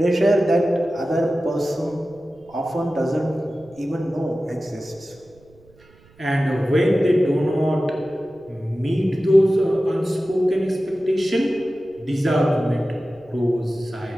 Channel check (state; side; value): noise; right; rumble, 29 dB below the sound